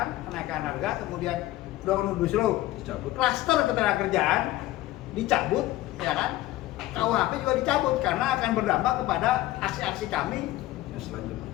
kenaikan harga, kemudian Omnibus Law dicabut, klaster ketenagakerjaan dicabut, ya kan? KUHP juga dicabut karena akan berdampak kepada aksi-aksi kami.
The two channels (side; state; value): right; quieter; 16.2 dB